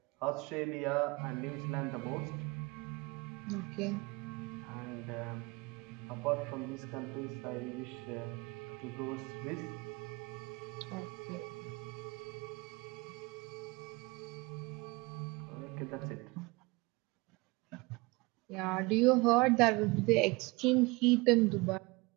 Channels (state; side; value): quieter; left; 25.3 dB